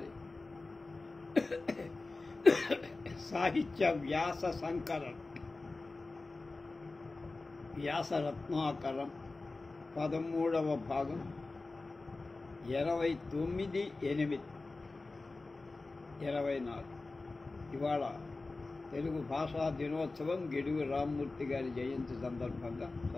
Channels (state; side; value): quieter; right; 3.5 dB